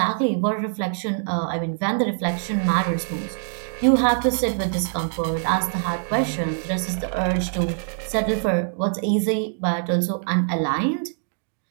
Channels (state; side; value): silent; left; digital silence